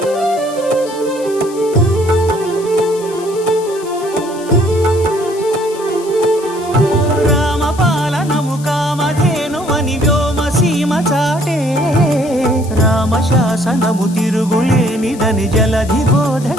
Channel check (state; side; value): noise; left; hiss, 18 dB below the sound